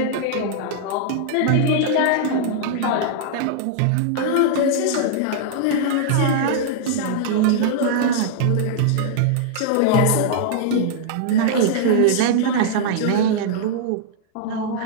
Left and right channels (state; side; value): different; both; correlation -0.01